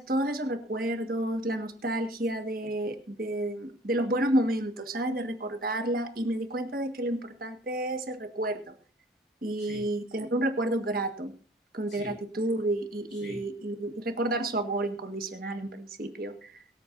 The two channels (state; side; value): normal; both; correlation 0.51